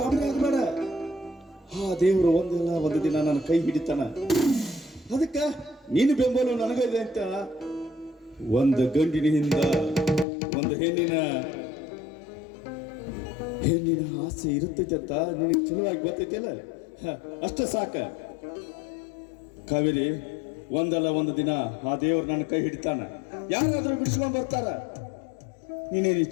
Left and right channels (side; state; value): right; drops out; at 10.2 s